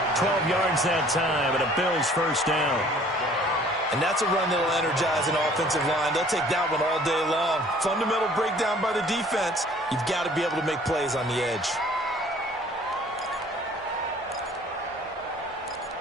12 yards that time and a Bills first down. And that's a run that will energize an offensive line. They'll take that one all day long. Fundamental breakdown by the defense. You've got to be able to make plays on the edge.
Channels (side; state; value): both; normal; correlation 0.54